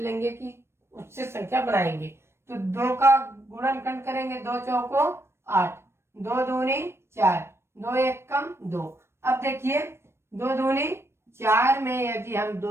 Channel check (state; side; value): late; left; 0.12 ms